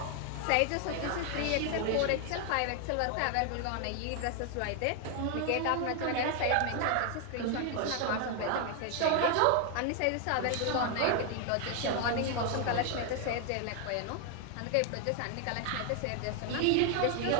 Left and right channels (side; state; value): both; different; correlation 0.00